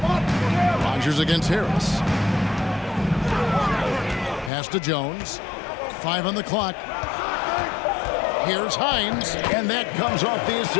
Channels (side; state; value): right; drops out; at 4.5 s